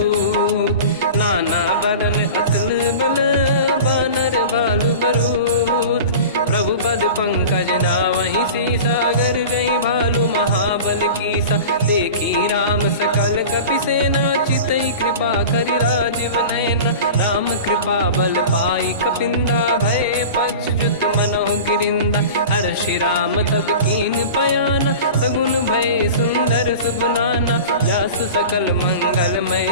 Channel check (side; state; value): both; inverted; correlation -0.35